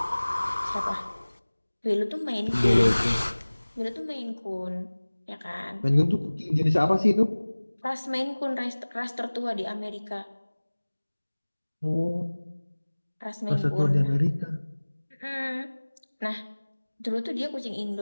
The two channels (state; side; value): inverted; both; correlation -1.00